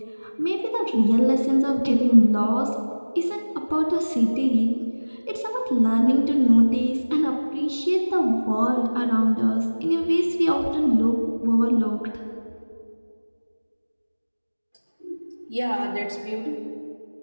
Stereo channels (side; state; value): both; inverted; correlation -1.00